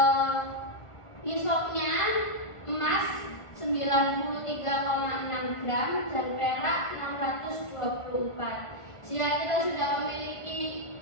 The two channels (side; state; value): right; late; 1.5 ms